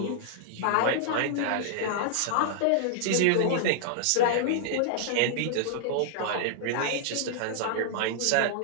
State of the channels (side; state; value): both; different; correlation -0.01